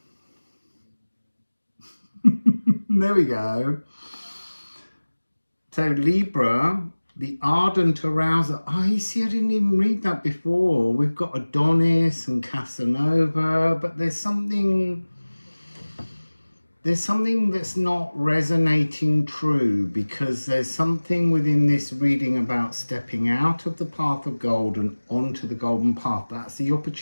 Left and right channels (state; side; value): inverted; both; correlation -1.00